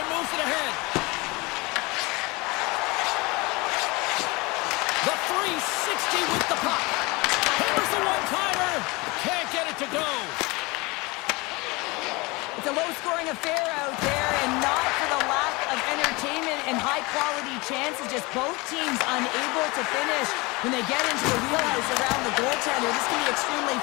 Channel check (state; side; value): quieter; right; 24.8 dB